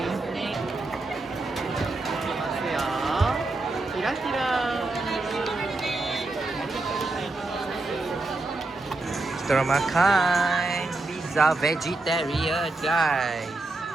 Ya, kira-kira kita orang makan pizza vegetarian guys.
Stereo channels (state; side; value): quieter; left; 3.1 dB